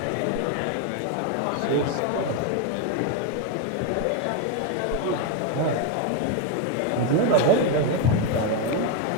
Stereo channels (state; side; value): different; both; correlation 0.01